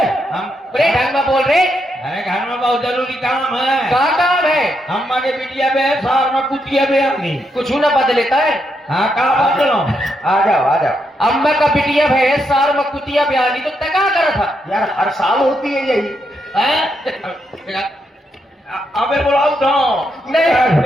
हम। बड़े ढंग में बोल रहे। अरे घर में बहुत जरूरी काम है। क्या काम है? हम माने बिटिया बे सार में कुटिया बे अपनी। कुछ न बदलेता है। हाँ कहा बदलो। आ जाओ आ जाओ। अम्मा का बिटिया है, सार में कुतिया बयानी तो तय क्या करा था? यार हर साल होती है यही। अबे बुलाओ तो नहीं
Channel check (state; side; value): normal; both; correlation 0.80